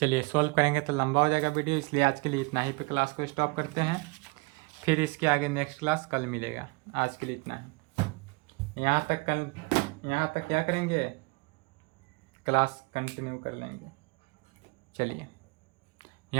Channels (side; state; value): left; quieter; 29.1 dB